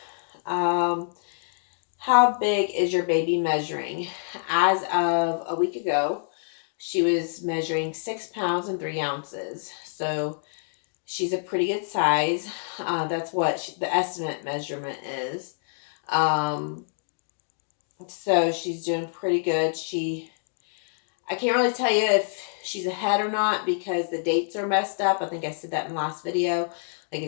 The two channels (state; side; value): silent; right; digital silence